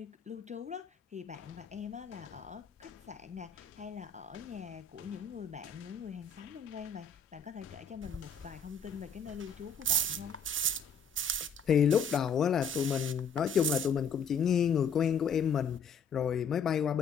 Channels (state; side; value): quieter; right; 5.1 dB